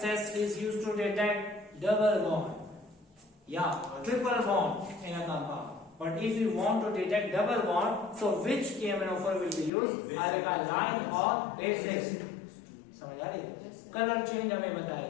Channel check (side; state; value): right; drops out; at 9.7 s